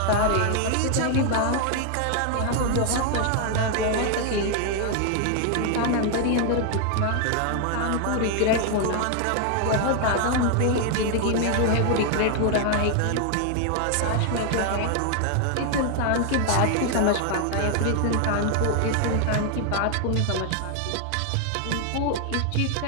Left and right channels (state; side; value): different; both; correlation 0.00